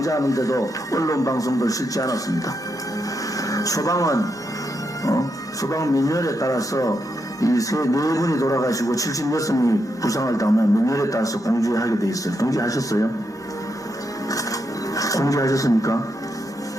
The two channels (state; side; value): normal; both; correlation 0.82